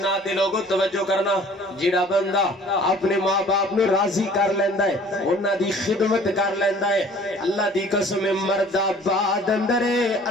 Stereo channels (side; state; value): both; normal; correlation 0.51